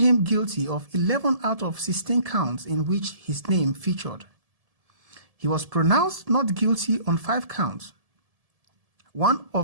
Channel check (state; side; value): late; left; 1.7 ms